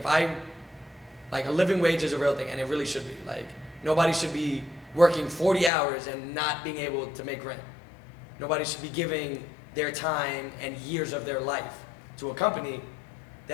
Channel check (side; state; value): right; drops out; at 5.7 s